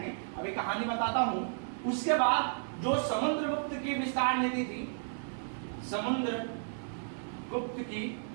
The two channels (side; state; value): left; silent; digital silence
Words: अभी कहानी बताता हूं। उसके बाद जो समुद्रगुप्त की विस्तार नीति थी, समुद्रगुप्त की